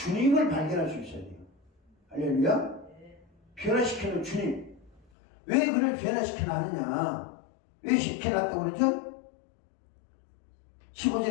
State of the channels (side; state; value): right; drops out; at 5.0 s